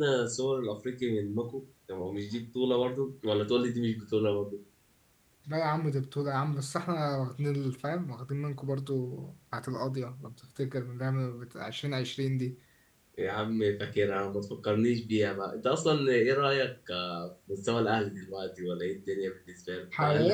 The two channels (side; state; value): both; identical; correlation 1.00